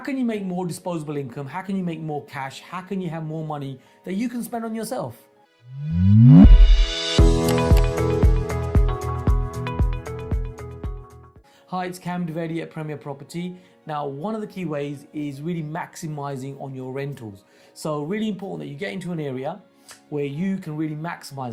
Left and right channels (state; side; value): identical; both; correlation 1.00